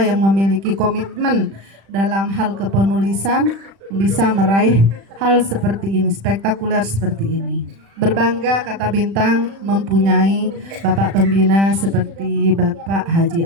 memiliki komitmen dalam hal kepenulisan bisa meraih hal seperti ini, spektakuler seperti ini. Berbangga Kata Bintang mempunyai Bapak Pembina seperti Bapak Haji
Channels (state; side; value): late; left; 36 ms